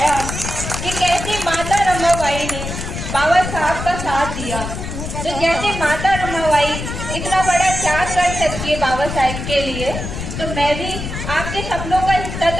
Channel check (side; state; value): left; noise; rumble, 6 dB below the sound